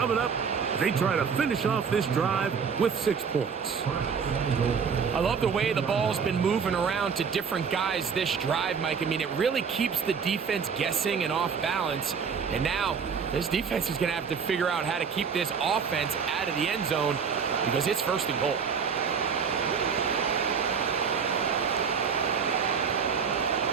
up. They try to finish off this drive with 6 points. I love the way the ball's been moving around to different guys this drive, Mike. I mean, it really keeps the defense guessing and off balance. And now this defense is going to have to figure out how to keep this offense out of the end zone because it's 1st and goal.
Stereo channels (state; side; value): quieter; left; 6.3 dB